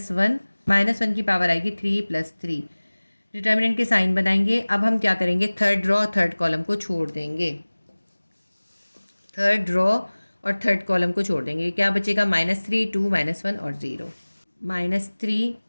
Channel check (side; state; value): both; inverted; correlation -1.00